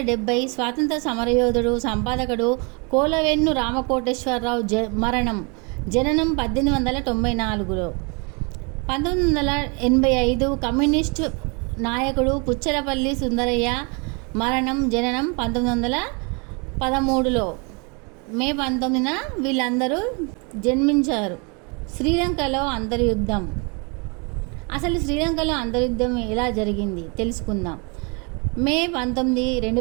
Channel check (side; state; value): left; quieter; 32.9 dB